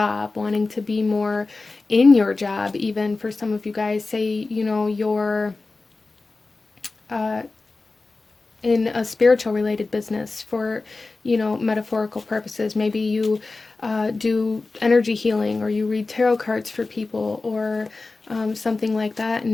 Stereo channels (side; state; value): right; quieter; 3.6 dB